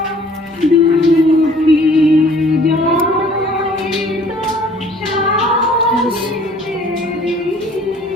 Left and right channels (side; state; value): both; normal; correlation 0.54